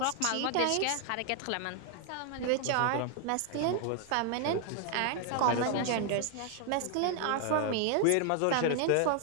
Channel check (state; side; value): different; both; correlation 0.00